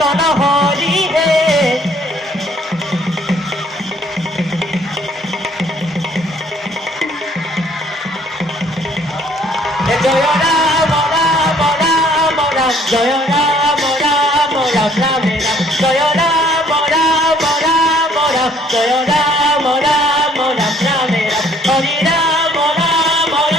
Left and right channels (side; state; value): both; normal; correlation 0.61